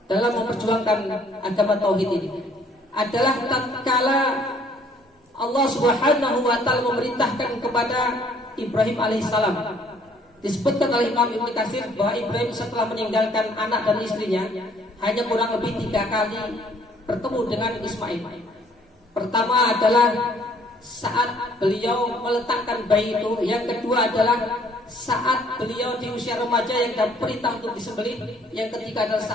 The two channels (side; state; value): both; normal; correlation 0.61